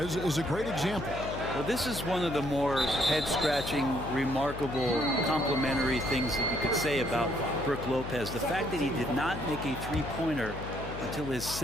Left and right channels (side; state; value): left; noise; hum, 9 dB below the sound